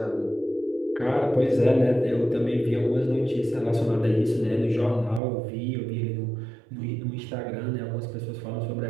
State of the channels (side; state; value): left; drops out; at 5.2 s